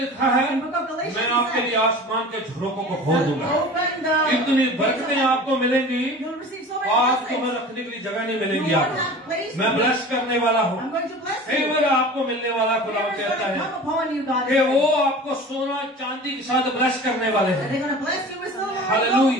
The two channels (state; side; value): normal; both; correlation 0.38